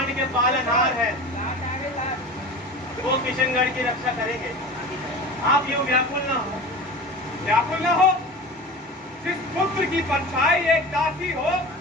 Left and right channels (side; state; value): both; normal; correlation 0.33